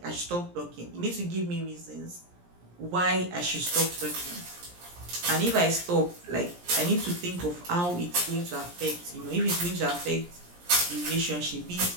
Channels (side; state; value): left; late; 17 ms